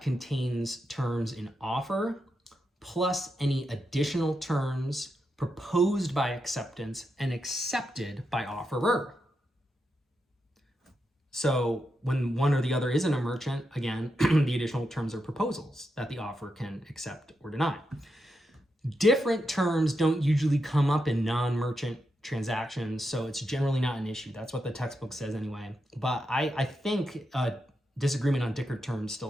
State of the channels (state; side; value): normal; both; correlation 0.85